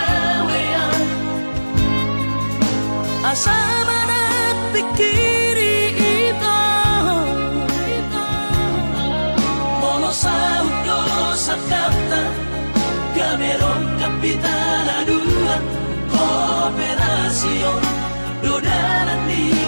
asa manat pikiri ito mono saudo sakapta gaberon kapitaladuan kooperasyon dodaran di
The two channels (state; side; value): inverted; both; correlation -1.00